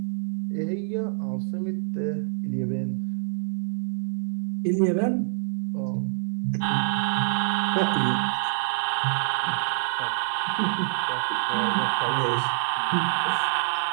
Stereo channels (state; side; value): silent; left; 61 dB below the other